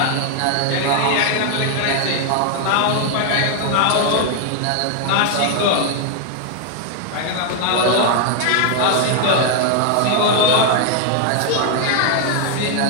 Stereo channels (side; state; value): both; different; correlation 0.00